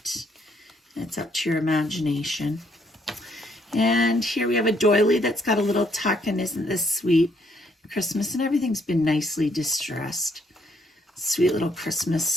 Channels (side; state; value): both; normal; correlation 0.70